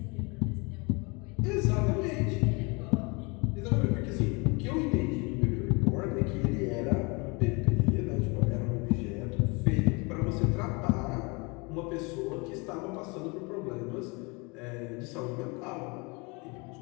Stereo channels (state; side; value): quieter; right; 29.0 dB